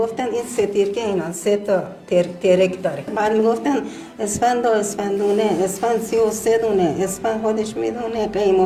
این سترکه اینا 3 تا ترک داره. بعد میگفتن اسفند و اسفندونه، اسفند 33 دونه، اسفند خودش میدونه قیم و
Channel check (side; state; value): both; identical; correlation 1.00